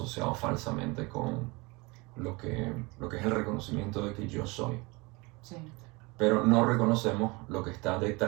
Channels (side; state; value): left; quieter; 25.7 dB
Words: falsamente con lo que es el reconocimiento de que yo soy. Sí. Pero no reconocemos lo que está